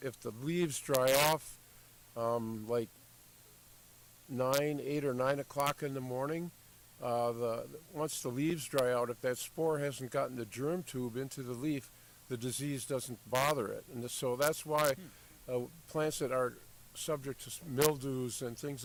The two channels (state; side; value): identical; both; correlation 1.00